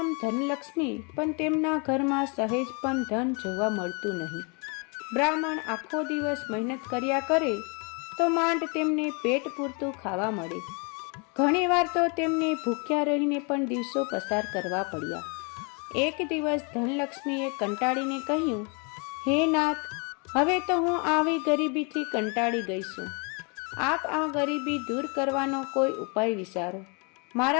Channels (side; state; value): right; quieter; 33.9 dB